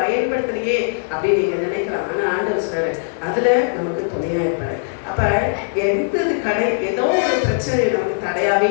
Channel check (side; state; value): right; silent; digital silence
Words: பயன்படுத்தலையே அப்படின்னு நீங்க நினைக்கலாம். ஆனா ஆண்டவர் சொல்றாரு, அதுல நமக்கு துணையா இருப்பாரு. அப்ப ஏதோ ஒரு பிரச்சனை நமக்கு தடையாவே